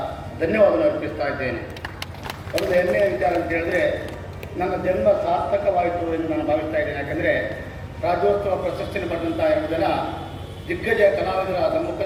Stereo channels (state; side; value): identical; both; correlation 1.00